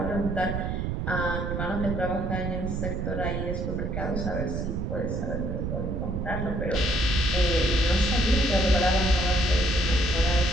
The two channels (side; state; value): right; noise; rumble, 2 dB below the sound